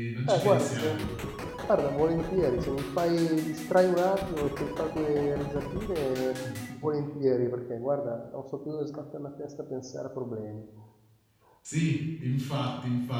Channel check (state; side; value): identical; both; correlation 1.00